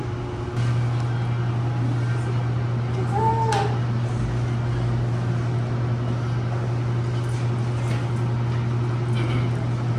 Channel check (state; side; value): identical; both; correlation 1.00